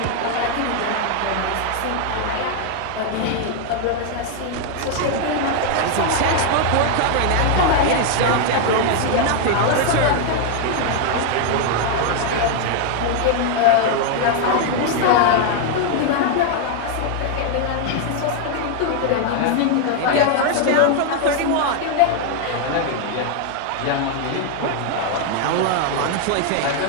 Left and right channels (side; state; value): both; different; correlation 0.00